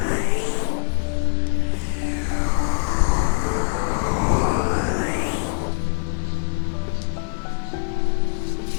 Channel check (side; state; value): right; silent; 61 dB below the other